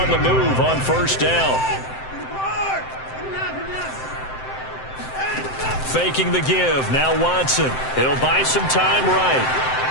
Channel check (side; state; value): right; late; 7.7 ms